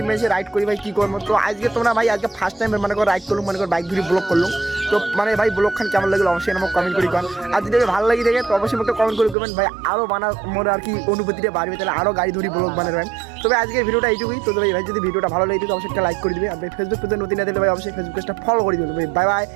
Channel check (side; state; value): left; drops out; at 9.3 s